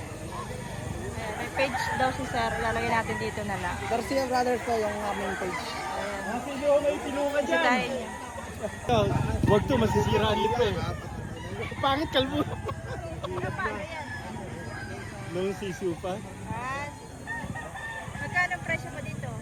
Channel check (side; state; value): both; identical; correlation 1.00